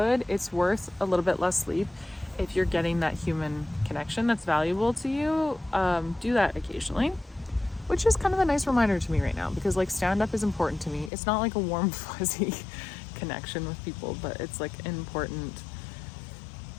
worth a little bit less sleep if you're getting that human connection that's valuable to you. Do that occasionally, which is kind of a nice reminder to me right now, because like stand-up is important to me. It's not like a warm fuzzy connection with people, but it's like an important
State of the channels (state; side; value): drops out; right; at 11.1 s